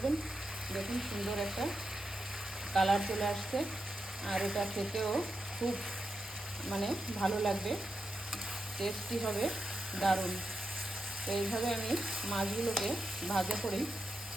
দেখুন সুন্দর একটা কালার চলে আসছে, আর এটা খেতেও খুব ভালো লাগবে, টেস্টি হবে, দারুণ। তো এইভাবে আমি মাছগুলোকে ভাজা করি।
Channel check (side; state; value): both; normal; correlation 0.87